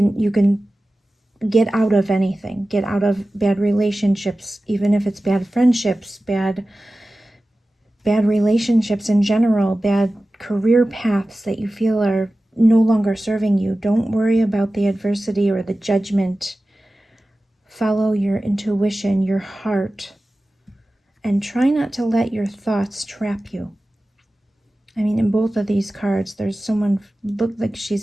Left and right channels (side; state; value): both; normal; correlation 0.96